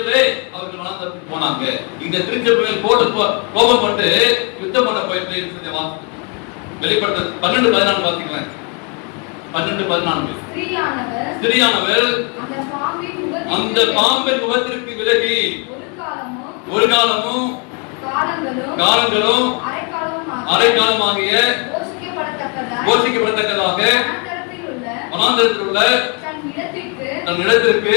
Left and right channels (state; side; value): quieter; right; 34.7 dB